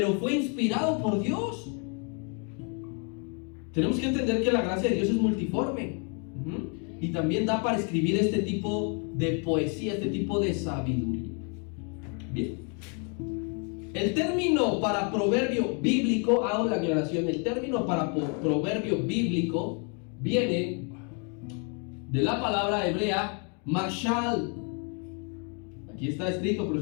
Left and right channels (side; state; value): right; quieter; 38.1 dB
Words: fue inspirado por Dios. Tenemos que entender que la gracia de Dios es multiforme. Y también da para escribir este tipo de poesía, este tipo de sabiduría. Bien. El término para proverbio bíblico, hago la aclaración, el término para proverbio bíblico viene de la palabra hebrea mashal. Aquí está escrito,